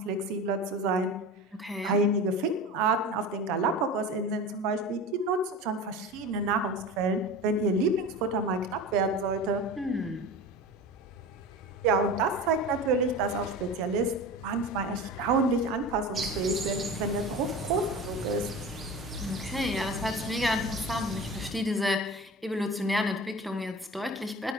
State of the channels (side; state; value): both; normal; correlation 0.32